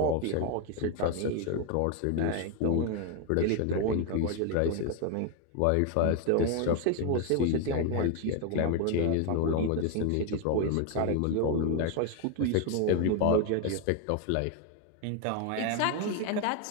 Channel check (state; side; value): different; both; correlation 0.01